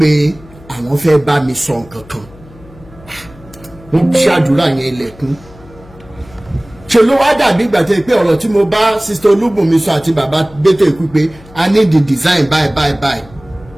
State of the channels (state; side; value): noise; left; hum, 23 dB below the sound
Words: àwọn fẹ́ bá mi sọ nǹkan kan. Wọ́n ṣàdúrà yẹn ilẹ̀kùn. Ṣé ló wá dàbí ìgbà tẹ́ pé ọ̀rọ̀ tí mo bá Sista Olúbùnmi sọ àti bàbá Gbétò Ikú pé I need the design bye.